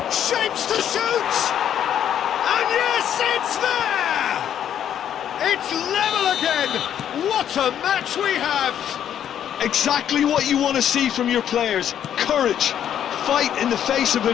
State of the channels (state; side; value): quieter; right; 9.8 dB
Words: Shapes to shoot! And yes, it's there! It's level again! What a match we have! Exactly what you want to see from your players. Courage. Fight in the face of